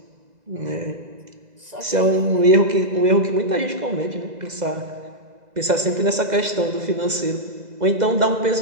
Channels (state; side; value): late; left; 2.0 ms